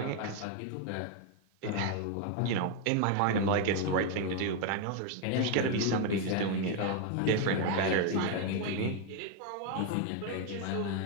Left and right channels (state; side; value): different; both; correlation 0.01